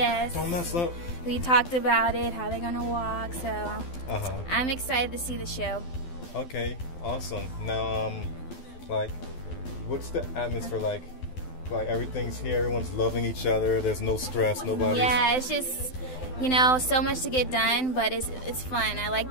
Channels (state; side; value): late; right; 12 ms